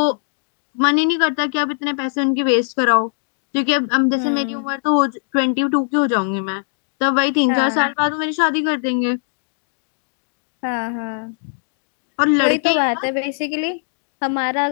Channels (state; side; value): silent; right; digital silence